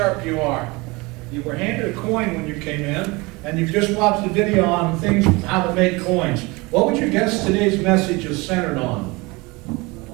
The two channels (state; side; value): quieter; left; 24.6 dB